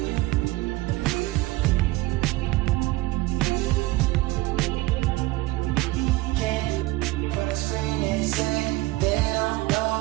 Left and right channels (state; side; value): quieter; left; 19.7 dB